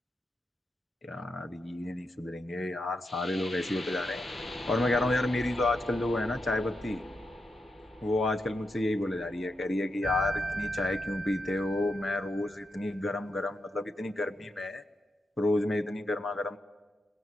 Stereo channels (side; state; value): both; normal; correlation 0.86